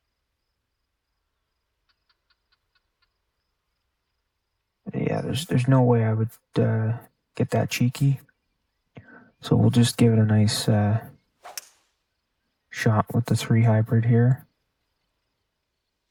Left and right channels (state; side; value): identical; both; correlation 1.00